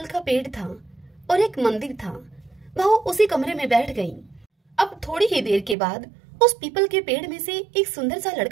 का पेड़ था और एक मंदिर था। वह उसी कमरे में बैठ गई। अब थोड़ी ही देर के बाद उस पीपल के पेड़ में से एक सुंदर सा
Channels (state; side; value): drops out; left; at 5.8 s